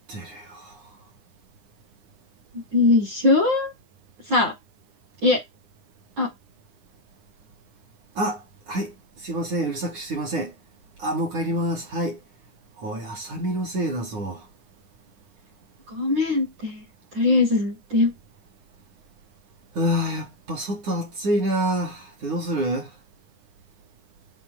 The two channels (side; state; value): left; late; 9.8 ms